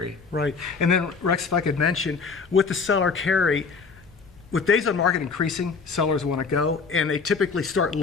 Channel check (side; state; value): right; quieter; 5.0 dB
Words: Right. And then, Rex, if I could mention, with the seller carry, with days on market increasing, sellers want to go, and they typically start